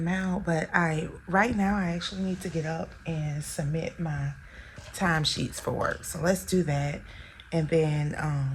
out. But right now I actually need to get up and submit my timesheets for work. So let's do that. And then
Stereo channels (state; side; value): identical; both; correlation 1.00